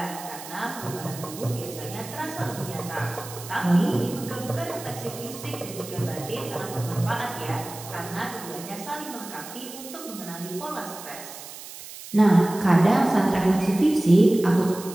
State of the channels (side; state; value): right; noise; hiss, 13 dB below the sound